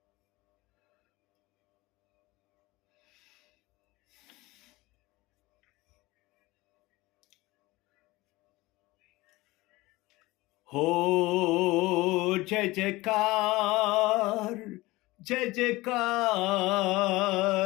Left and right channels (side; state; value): right; quieter; 20.4 dB